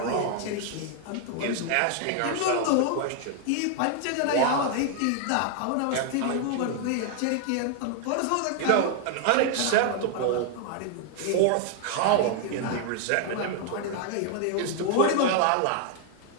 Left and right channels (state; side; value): different; both; correlation 0.00